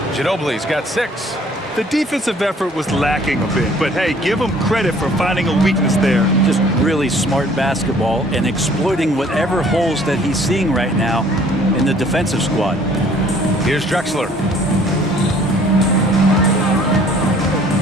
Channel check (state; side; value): normal; both; correlation 0.56